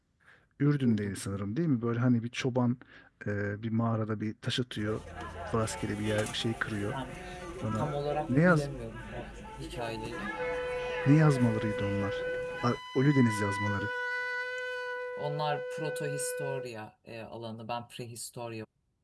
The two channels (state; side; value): identical; both; correlation 1.00